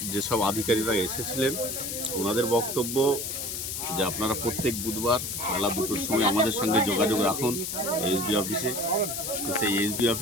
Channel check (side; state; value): left; noise; hiss, 5 dB below the sound